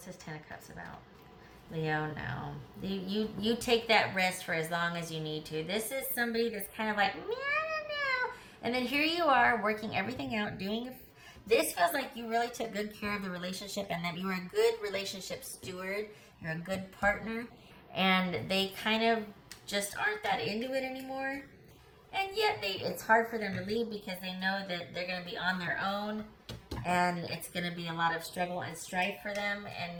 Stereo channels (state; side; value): identical; both; correlation 1.00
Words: this Ten of Cups about? Leo, no. You take that rest for as long as you need to. This is somebody that's kind of like, meow, meow. And then here you are working everything out, this feels like you really took good care of the relationship and that you were a good relationship steward. You're a good partner. And they kind of just aren't that into it anymore. And yet it's hard for them to leave because they know that they're going to be on their own. And it's going to be a lot of struggle and strife for them.